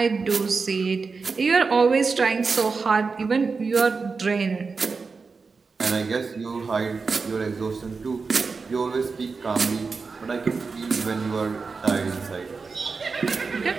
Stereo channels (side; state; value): left; quieter; 4.6 dB